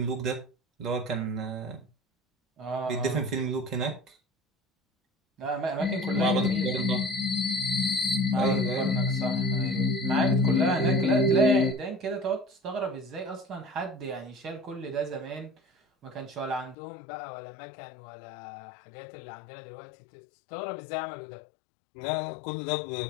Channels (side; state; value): right; drops out; at 16.8 s